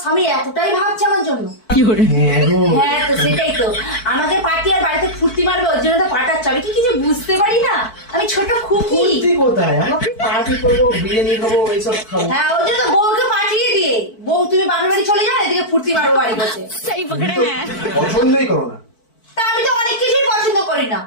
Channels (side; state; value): right; late; 4.5 ms